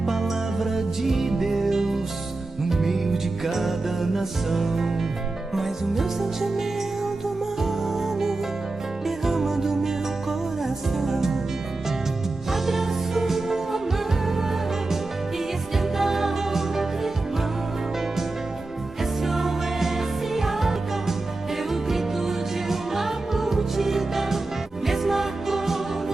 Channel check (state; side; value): quieter; left; 3.2 dB